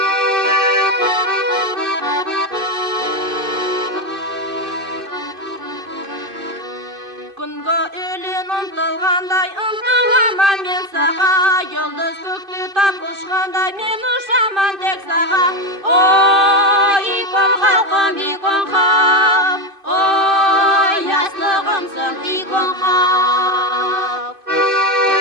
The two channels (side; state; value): left; late; 2.5 ms